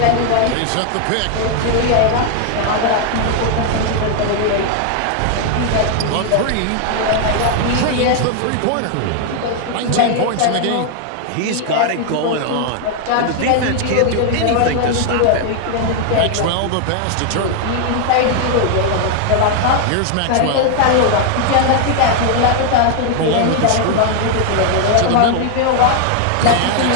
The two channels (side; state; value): both; different; correlation 0.00